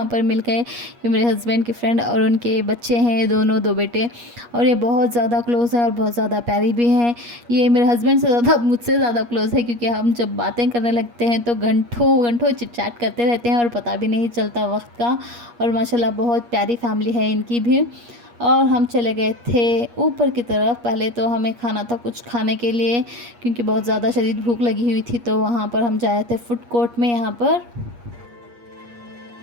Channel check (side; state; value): left; late; 8.4 ms